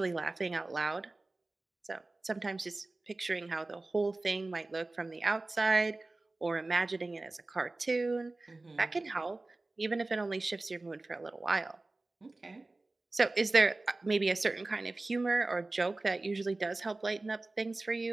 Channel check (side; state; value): left; quieter; 3.1 dB